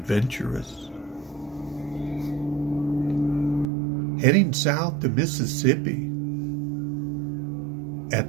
Heading south to Mississippi, at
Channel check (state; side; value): drops out; left; at 3.7 s